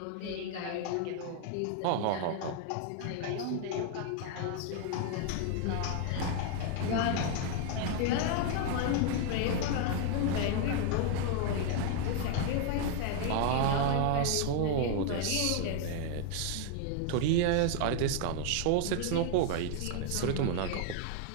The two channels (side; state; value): both; different; correlation 0.00